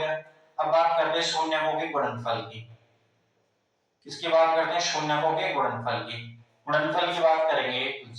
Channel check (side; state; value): both; identical; correlation 1.00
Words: अब बात करते हैं शून्यकों के गुणनफल की, किसकी बात करते हैं शून्यकों के गुणनफल की, गुणनफल की बात करेंगे तो